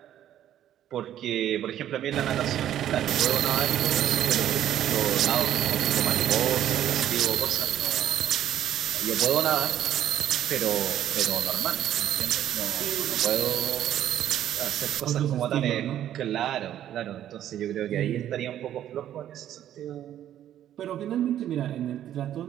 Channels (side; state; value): left; quieter; 11.4 dB